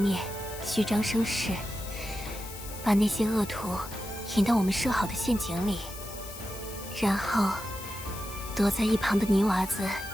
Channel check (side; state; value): left; noise; hiss, 12 dB below the sound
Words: 虚张声势，把那些恶徒引到我们设好的陷阱里，然后躲在一旁的泥娃子